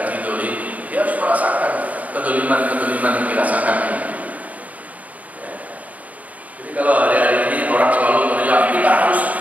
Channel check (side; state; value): left; late; 0.072 ms